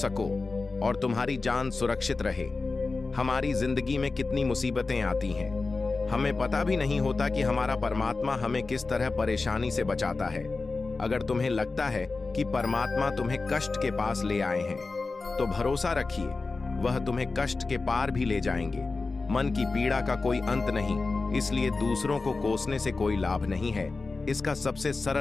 और तुम्हारी जान सुरक्षित रहे। हमारी जिंदगी में कितनी मुसीबतें आती हैं, हमें पता भी नहीं होता कि हमारा परमात्मा हमें किस तरह परेशानी से बचाता है। अगर तुम्हें लगता है कि परमात्मा तुम्हें कष्ट के पास ले आए हैं, तो भरोसा रखिए, वह तुम्हें कष्ट के पार भी ले जाएंगे। मन की पीड़ा का कोई अंत नहीं, इसलिए दूसरों को कोसने से कोई लाभ नहीं है। इसका सबसे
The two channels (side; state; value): right; quieter; 3.8 dB